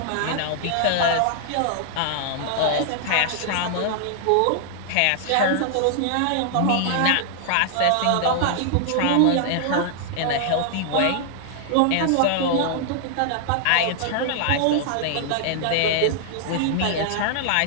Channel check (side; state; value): both; different; correlation -0.01